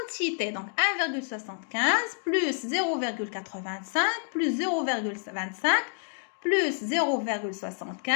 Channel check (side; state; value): right; silent; 59 dB below the other